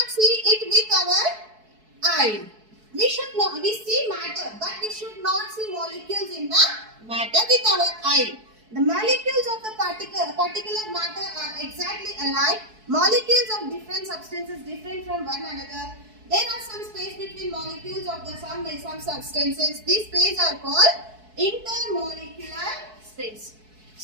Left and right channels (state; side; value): late; left; 4.6 ms